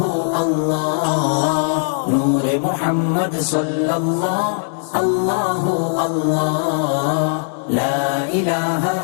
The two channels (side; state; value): right; silent; 67 dB below the other